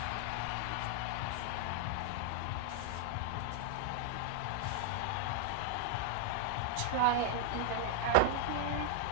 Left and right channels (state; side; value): different; both; correlation 0.00